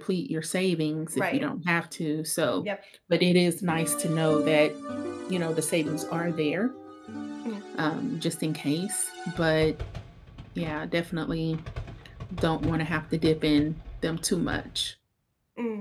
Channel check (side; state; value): both; identical; correlation 1.00